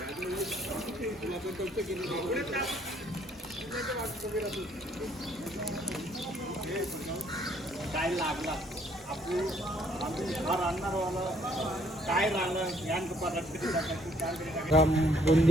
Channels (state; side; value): normal; both; correlation 0.65